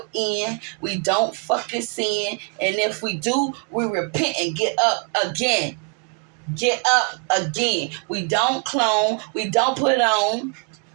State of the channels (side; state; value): left; quieter; 37.1 dB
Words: end. We don't fucking sin. And if we do, we repent and get up again. Get up again. We don't clone. We don't put on.